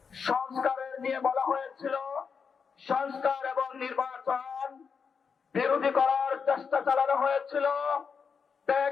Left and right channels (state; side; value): quieter; right; 6.0 dB